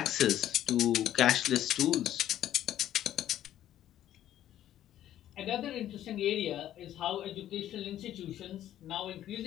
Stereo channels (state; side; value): quieter; right; 12.1 dB